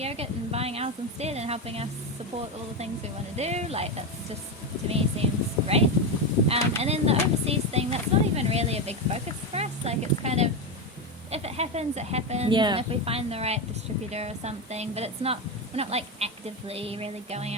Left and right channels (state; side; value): normal; both; correlation 0.13